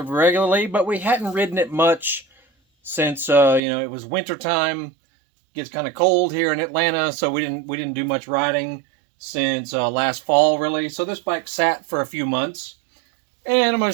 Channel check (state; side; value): drops out; left; at 3.6 s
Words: but we hadn't ridden it much since, it was wintertime. It gets kind of cold here in Atlanta, so we didn't do much riding since last fall, really. So this bike sat for a few months. And I'm going